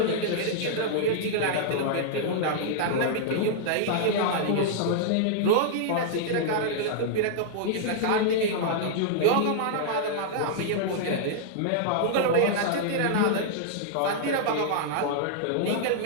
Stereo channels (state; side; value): different; both; correlation -0.01